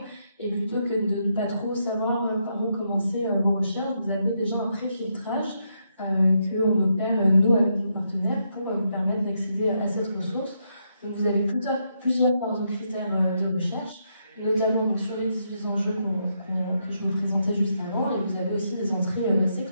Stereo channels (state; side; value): inverted; both; correlation -0.79